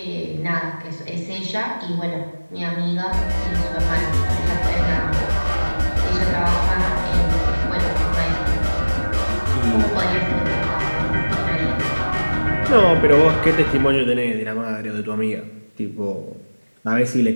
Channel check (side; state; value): both; inverted; correlation -1.00